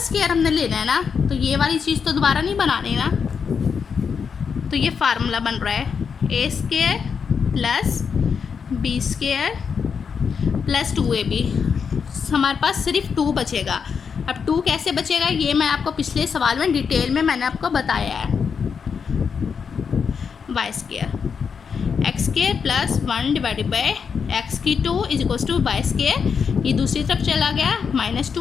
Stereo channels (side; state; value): right; quieter; 6.3 dB